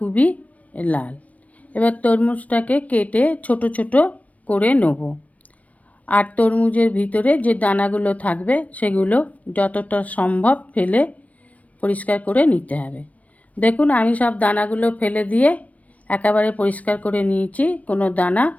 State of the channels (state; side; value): late; right; 0.069 ms